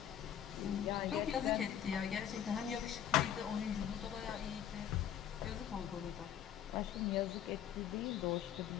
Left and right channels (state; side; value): quieter; right; 10.0 dB